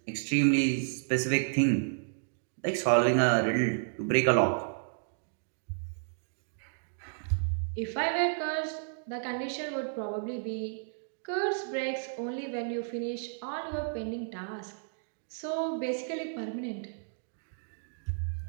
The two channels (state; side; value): silent; left; digital silence